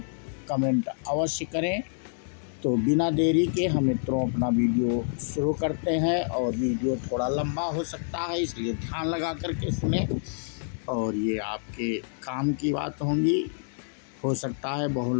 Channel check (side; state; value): right; silent; digital silence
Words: कमेंट अवश्य करें। तो बिना देरी के हम मित्रों अपना वीडियो शुरू करते हैं। और वीडियो थोड़ा लंबा हो सकता है, इसलिए ध्यान लगा करके सुने। और ये आपके काम की बात होंगी। हो सकता है बहुत